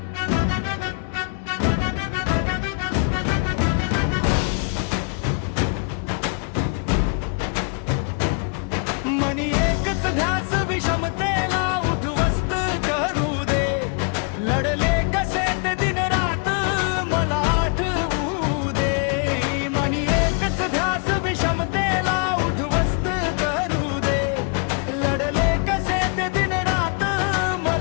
मनी एकच ध्यास विषमतेला उद्ध्वस्त करू दे। लढले कसे ते दिन रात मला आठवू दे। मनी एकच ध्यास विषमतेला उद्ध्वस्त करू दे। लढले कसे ते दिन रात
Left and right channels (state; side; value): quieter; right; 37.9 dB